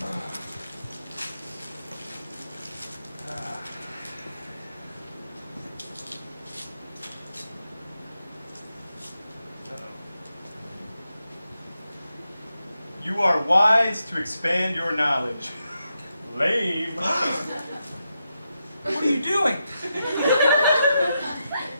You are wise to expand your knowledge. Lame. What are you doing?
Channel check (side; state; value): both; inverted; correlation -0.85